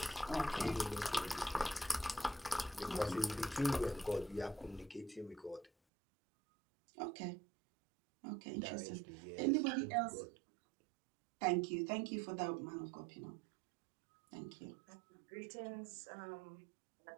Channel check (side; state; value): left; drops out; at 5.7 s